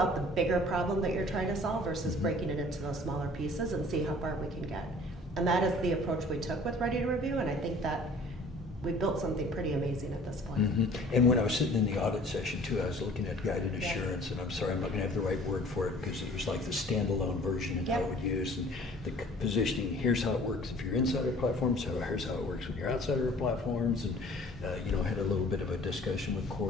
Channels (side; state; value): both; normal; correlation 0.50